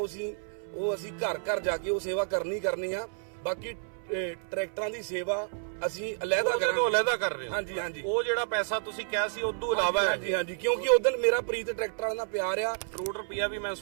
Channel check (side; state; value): left; silent; 58 dB below the other